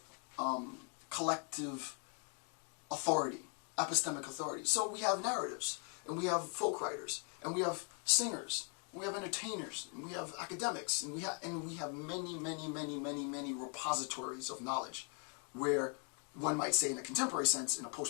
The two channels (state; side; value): quieter; right; 34.6 dB